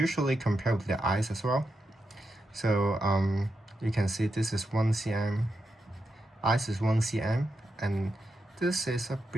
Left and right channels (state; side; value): normal; both; correlation 0.86